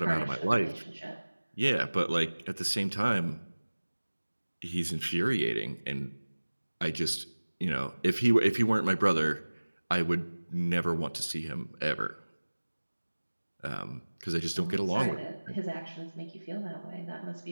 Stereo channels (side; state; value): both; inverted; correlation -1.00